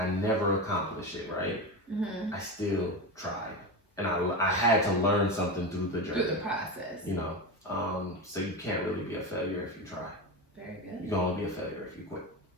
never accomplish it, right? I still tried. And I had to learn something through the journey. Through the process. So you can't really be a failure if you try. Very good. You can only be a failure if you quit.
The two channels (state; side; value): normal; both; correlation 0.20